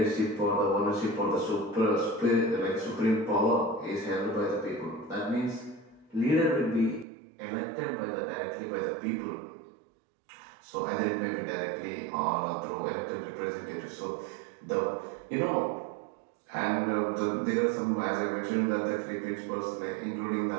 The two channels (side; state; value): left; drops out; at 7.1 s